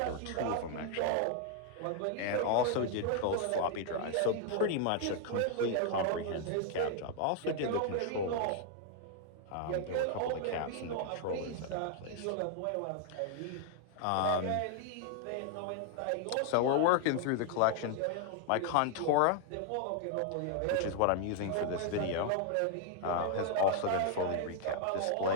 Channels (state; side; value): different; both; correlation 0.00